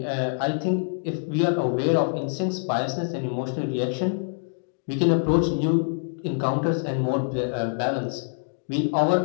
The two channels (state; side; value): silent; right; digital silence